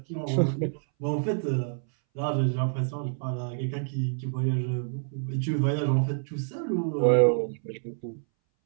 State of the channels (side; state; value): left; silent; 59 dB below the other